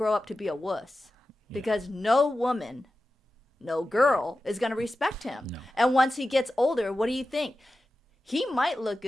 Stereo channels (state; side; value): normal; both; correlation 0.93